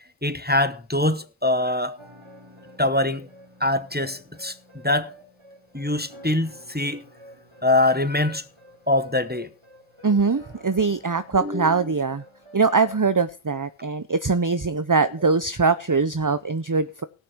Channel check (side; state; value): both; normal; correlation -0.13